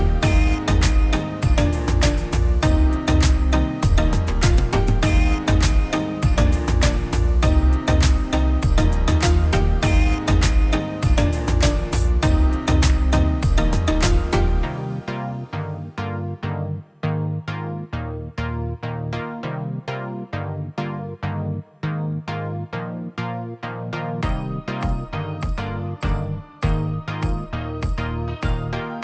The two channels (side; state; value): both; identical; correlation 1.00